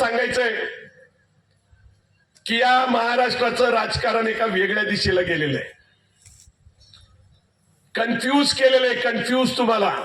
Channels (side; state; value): both; identical; correlation 1.00